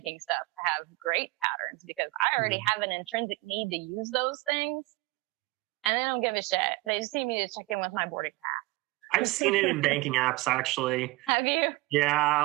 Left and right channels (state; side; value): quieter; left; 22.3 dB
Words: stuff have great patterns because I already have an intrinsic need to use those things, and they don't give a shit. They just need me to check in with my boarding pass. I've seen it in banking apps, actually. Have you? Yeah,